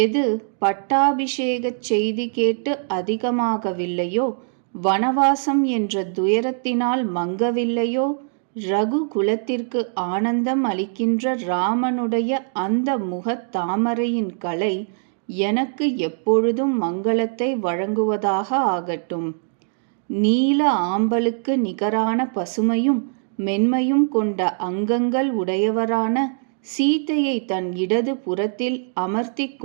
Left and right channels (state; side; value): silent; left; digital silence